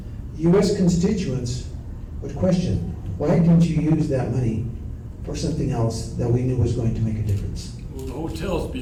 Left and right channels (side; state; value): both; identical; correlation 1.00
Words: U.S. constituents would question, why didn't you use that money for something else that we knew was going to make a difference? Well, the hotel's